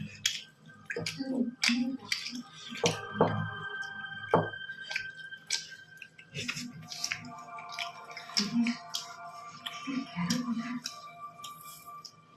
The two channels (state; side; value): identical; both; correlation 1.00